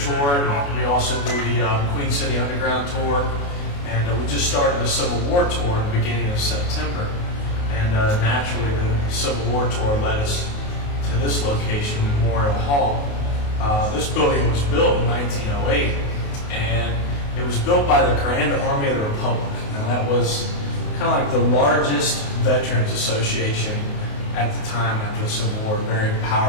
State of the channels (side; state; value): right; late; 28 ms